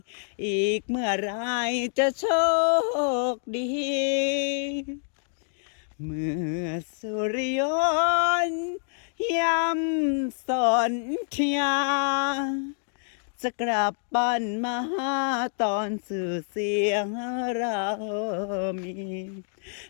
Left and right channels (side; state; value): right; silent; digital silence